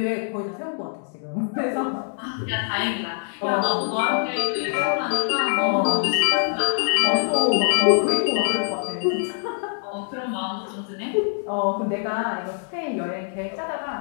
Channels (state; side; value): silent; right; digital silence